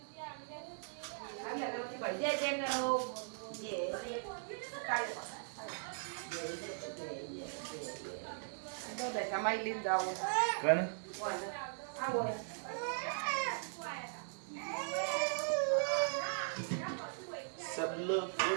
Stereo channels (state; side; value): silent; left; digital silence